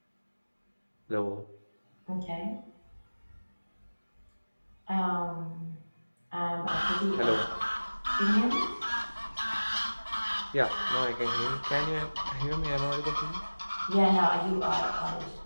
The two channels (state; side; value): inverted; both; correlation -1.00